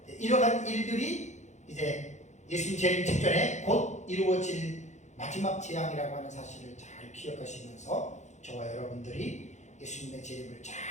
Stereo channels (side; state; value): right; late; 0.34 ms